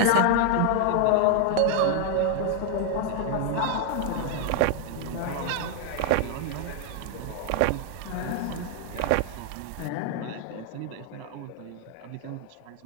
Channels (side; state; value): both; different; correlation 0.00